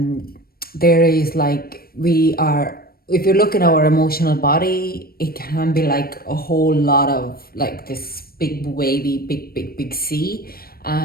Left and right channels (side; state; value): right; late; 0.44 ms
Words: There is like, we are, if you look at our emotional body, it can be like a whole lot of like this big wavy, big sea.